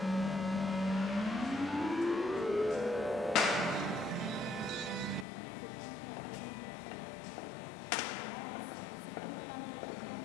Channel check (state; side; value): drops out; right; at 5.2 s